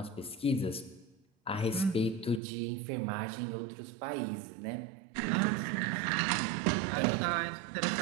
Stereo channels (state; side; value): drops out; left; at 2.4 s